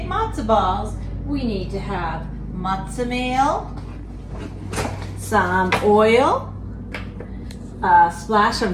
matzo balls, we need to have matzah meal, some oil, a splash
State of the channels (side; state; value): both; identical; correlation 1.00